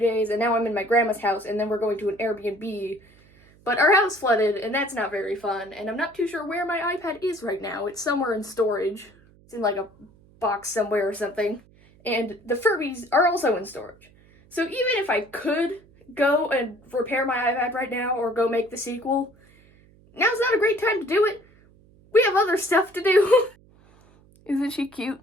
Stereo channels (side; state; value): right; noise; hum, 28 dB below the sound